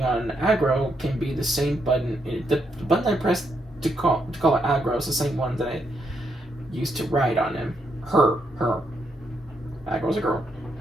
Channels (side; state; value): both; normal; correlation 0.78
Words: on aggro can be the same button. The button I pressed to call it aggro is the same one that I used to write on him. Her. Aggro's a girl.